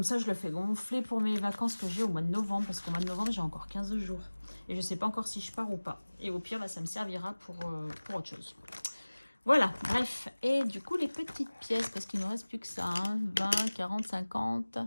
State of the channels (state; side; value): inverted; both; correlation -1.00